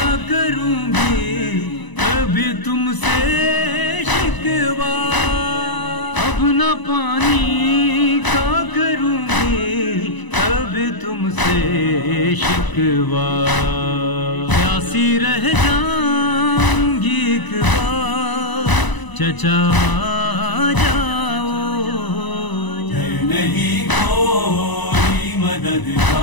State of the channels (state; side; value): late; right; 1.0 ms